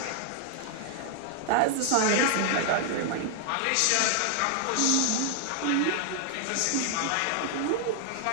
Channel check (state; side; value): different; both; correlation 0.00